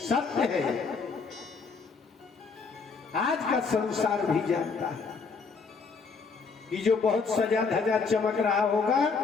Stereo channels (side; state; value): right; quieter; 4.8 dB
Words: है। आज का संसार भी जानता है कि जो बहुत सजा धजा चमक रहा होगा